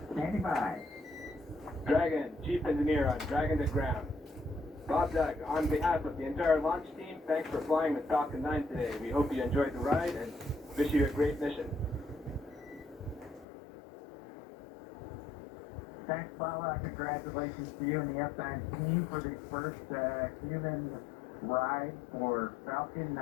Standing by. Dragon, Chief Engineer on Dragon to Ground. Bob Doug, on behalf of the entire launch team, thanks for flying with Falcon 9 today. We hope you enjoyed the ride and wish you a great mission. Thanks, Paula. Congratulations to you and the F9 team for the first human ride for Falcon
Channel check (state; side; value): drops out; right; at 13.5 s